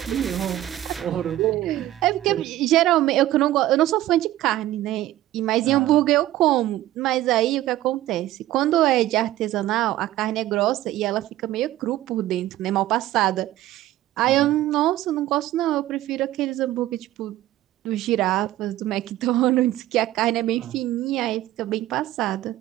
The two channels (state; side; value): quieter; left; 14.7 dB